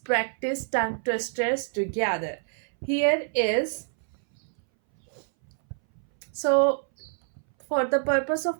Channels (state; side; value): silent; left; 60 dB below the other